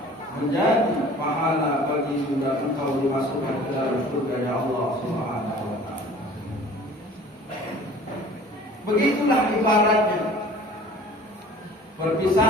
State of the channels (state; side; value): normal; both; correlation 0.47